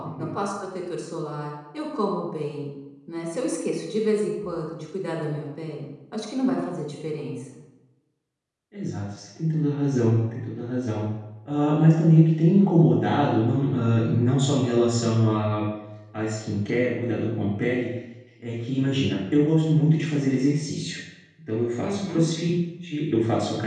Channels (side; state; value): both; identical; correlation 1.00